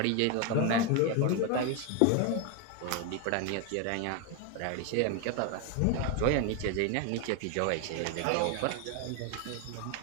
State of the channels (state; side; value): different; both; correlation 0.01